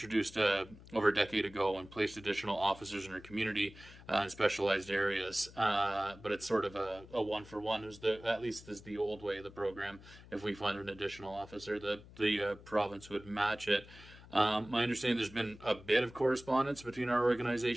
over a decade ago and placed additional officers in our community in specialized areas. But it's sort of a one-for-one, at least is the old way of the program. If we find an additional officer, the province would match it. My understanding, there's been a bit of correspondence between our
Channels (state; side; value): noise; left; hum, 19 dB below the sound